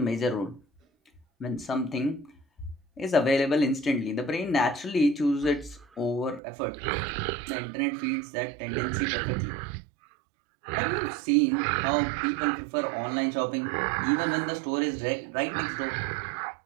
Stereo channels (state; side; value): drops out; left; at 6.4 s